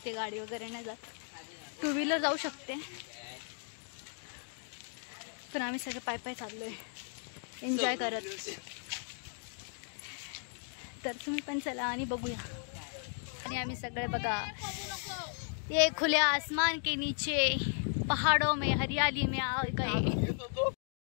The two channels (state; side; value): silent; right; 54 dB below the other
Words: गाडी वगैरे नाही जात। टू व्हीलर जाऊ शकते, पण आम्ही सगळे पाय पाय चाललोय एन्जॉय करत। तर तुम्ही पण चला आणि बघूया। आणि आम्ही सगळे बघा, ये खुले आसमान के नीचे पहाड़ों में हरियाली में आ गए।